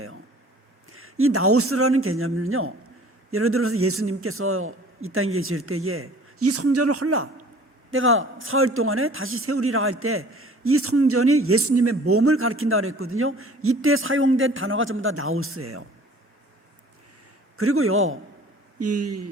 이 나우스라는 개념은요, 예를 들어서 예수님께서 이 땅에 계실 때에 이 성전을 헐라, 내가 사흘 동안에 다시 세우리라 할 때 이 성전이 예수님의 몸을 가리킨다고 그랬거든요. 이때 사용된 단어가 전부 다 나우스예요. 그리고요,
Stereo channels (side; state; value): both; normal; correlation 0.49